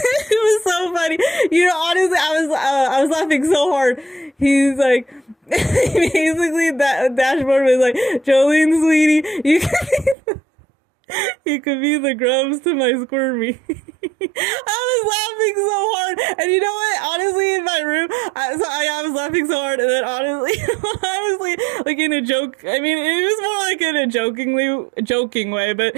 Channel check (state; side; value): drops out; left; at 10.2 s